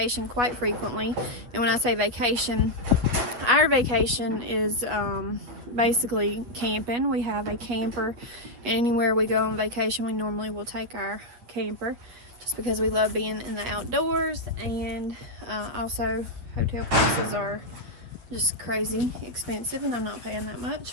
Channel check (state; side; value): late; left; 8.7 ms